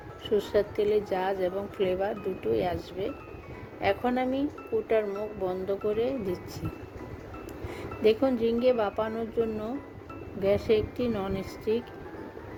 সরষের তেলের ঝাঁজ এবং ফ্লেভার দুটোই আসবে। এখন আমি কৌটার মুখ বন্ধ করে দিচ্ছি। দেখুন, ঝিঙে ভাপানোর জন্য গ্যাসে একটি ননস্টিক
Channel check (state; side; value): identical; both; correlation 1.00